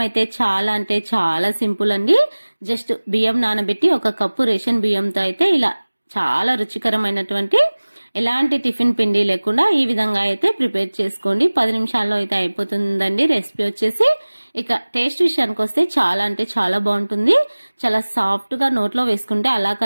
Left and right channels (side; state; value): both; inverted; correlation -1.00